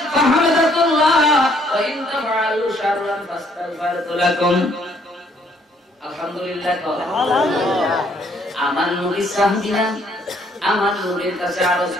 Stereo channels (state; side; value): normal; both; correlation 0.66